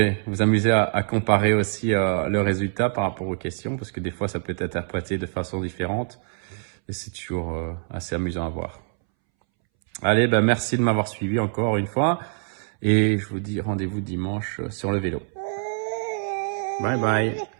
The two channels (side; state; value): left; silent; 62 dB below the other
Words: vous amuser à comparer aussi le résultat par rapport aux questions, parce que des fois ça peut être interprété de façon différente et c'est toujours assez amusant à voir. Allez, merci de m'avoir suivi encore une fois. Et je vous dis rendez-vous dimanche sur le vélo. Bye bye.